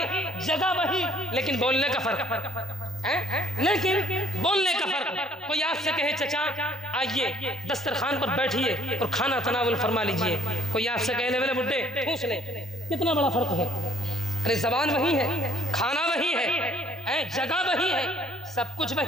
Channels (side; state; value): both; normal; correlation 0.60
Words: جگہ وہی، لیکن بولنے کا فرق، لیکن بولنے کا فرق۔ کوئی آپ سے کہے چچا آئیے دسترخوان پر بیٹھیے اور کھانا تناول فرما لیجئے، کوئی آپ سے کہے لے بڈھے ٹھوس لے، کتنا بڑا فرق ہے؟ ارے زبان وہی ہے، کھانا وہی ہے، جگہ وہی ہے، سب کچھ